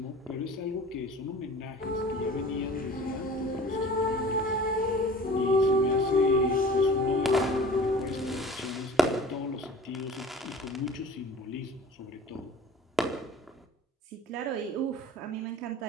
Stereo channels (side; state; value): both; normal; correlation 0.43